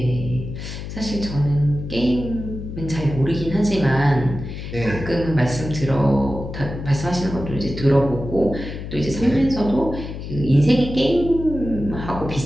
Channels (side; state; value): left; noise; hum, 8 dB below the sound